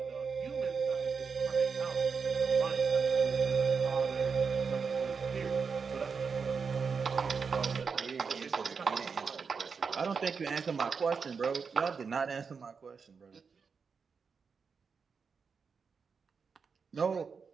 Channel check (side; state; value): left; quieter; 5.5 dB